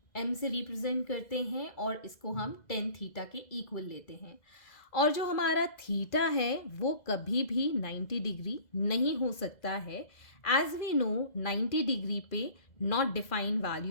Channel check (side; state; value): right; late; 2.0 ms